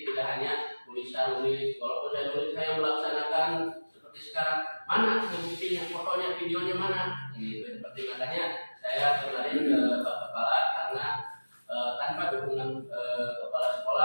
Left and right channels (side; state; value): both; inverted; correlation -1.00